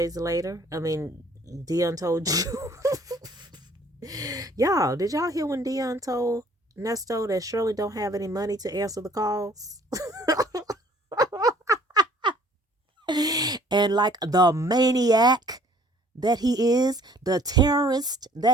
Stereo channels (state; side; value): normal; both; correlation 0.57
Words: later. I mean, Deon told you. Y'all, did y'all hear when Deon told Nesto that Shirley don't have any money to answer the calls? And like the maniac that he is, the terrorist